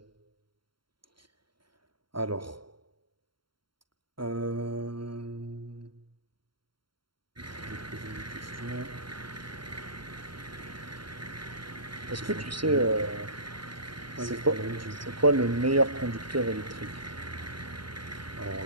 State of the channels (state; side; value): late; left; 0.73 ms